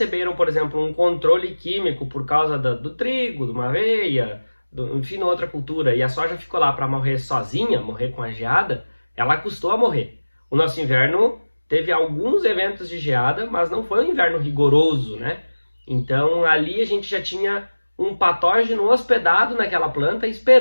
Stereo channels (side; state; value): both; inverted; correlation -1.00